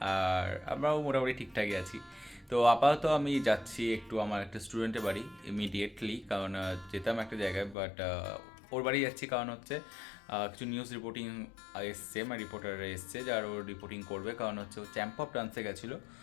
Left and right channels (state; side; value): drops out; right; at 7.8 s